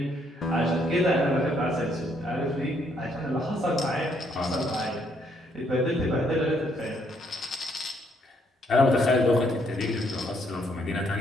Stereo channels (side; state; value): both; normal; correlation 0.70